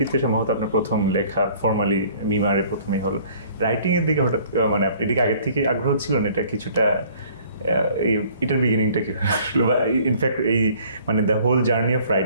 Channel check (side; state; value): both; inverted; correlation -0.55